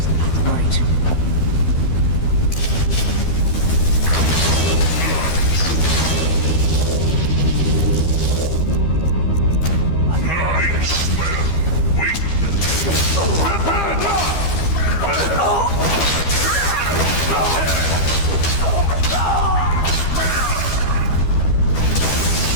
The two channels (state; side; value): late; right; 12 ms